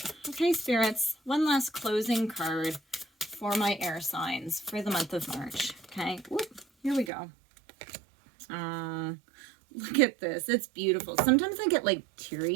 okay, spirits, one last closing card for my air signs for the month of March. Okay, whoop, here we go. Look at this. It's beautiful. Sometimes I get like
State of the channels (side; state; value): left; drops out; at 7.1 s